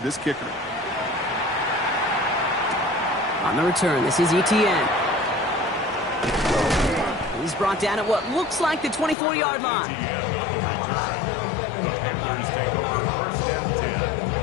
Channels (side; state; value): right; drops out; at 9.2 s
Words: kicker. On the return, this is Etienne. He's brought down at what looks like the 24-yard line. Etienne on the return. The Panthers take over 1st and 10